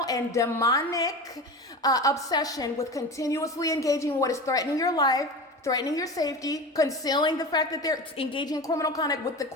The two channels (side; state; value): both; normal; correlation 0.29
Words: and demonic obsession with continuously engaging in what is threatening your life, threatening your safety, concealing the fact that they're engaging in criminal conduct with the